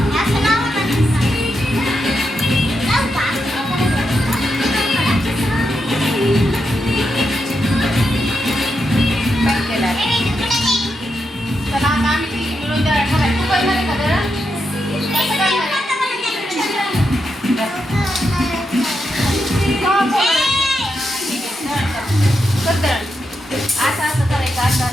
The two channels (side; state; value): both; normal; correlation 0.85